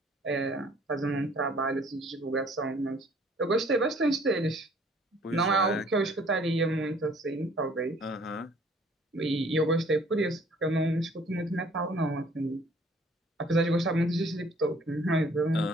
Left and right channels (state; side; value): normal; both; correlation 0.58